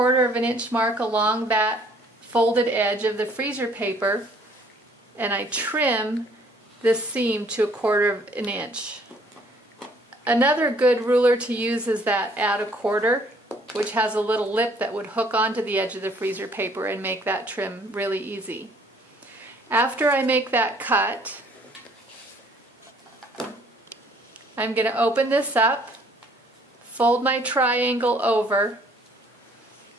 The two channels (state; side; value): normal; both; correlation 0.60